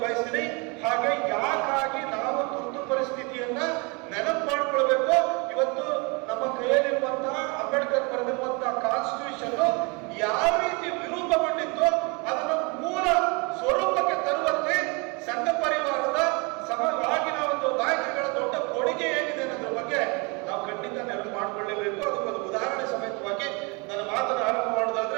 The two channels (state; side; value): quieter; left; 30.1 dB